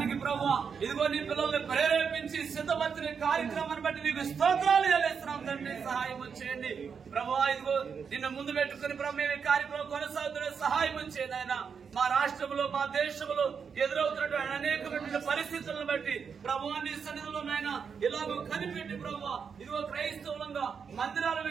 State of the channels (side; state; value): left; quieter; 6.4 dB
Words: ప్రభా, ఇదిగో నీ పిల్లల్ని ప్రేరేపించి సిద్ధపరిచిన కార్యక్రమాన్ని బట్టి నీకు స్తోత్రాలు చెల్లిస్తున్నాం తండ్రి. సహాయం చేయండి ప్రభా. ఇదిగో నిన్న ముందు పెట్టుకుని ప్రభు ఈ కార్యక్రమం కొనసాగుతున్న సహాయం చేయండి ఆయన. మా రాష్ట్రంలో, మా దేశంలో ఎదురవుతున్నటువంటి అనేకమైన పరిస్థితులను బట్టి ప్రభువాన్ని సన్నిధిలో నాయన ఇలాగో కనిపెట్టి ప్రభు, ఇదిగో క్రైస్తవులంగా మందిరాల